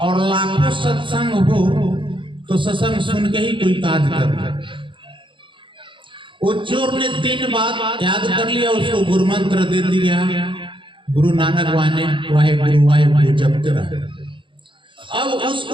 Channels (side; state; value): left; late; 0.24 ms